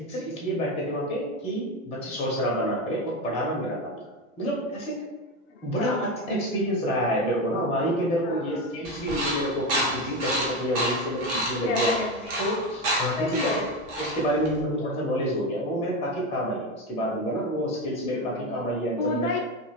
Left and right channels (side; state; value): both; normal; correlation 0.17